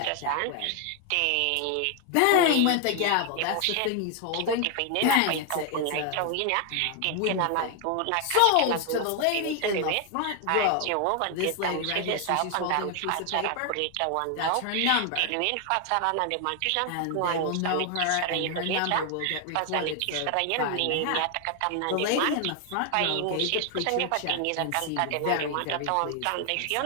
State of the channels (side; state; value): both; different; correlation 0.00